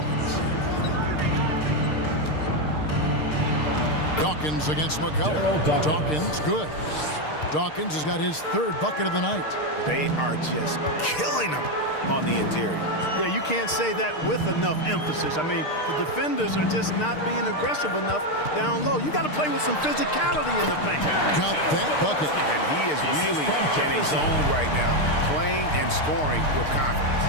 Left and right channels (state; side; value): late; right; 6.6 ms